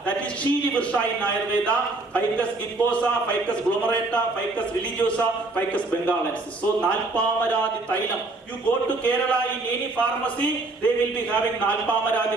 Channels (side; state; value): left; quieter; 3.2 dB